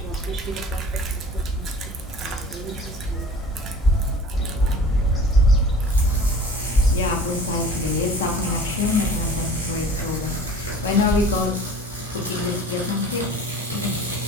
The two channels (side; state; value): both; normal; correlation 0.44